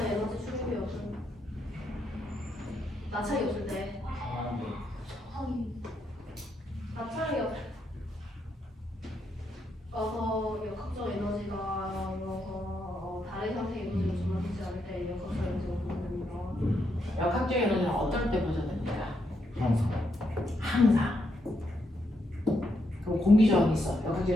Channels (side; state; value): both; normal; correlation 0.79